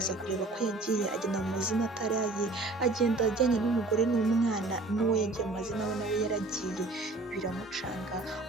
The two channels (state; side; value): quieter; left; 3.1 dB